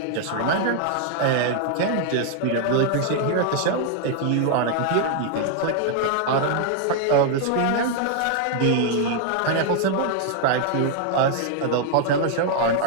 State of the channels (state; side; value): different; both; correlation 0.00